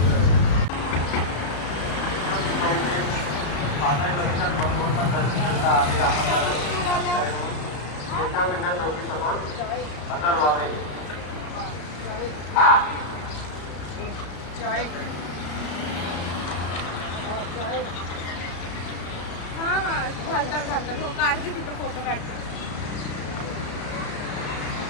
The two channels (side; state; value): right; late; 34 ms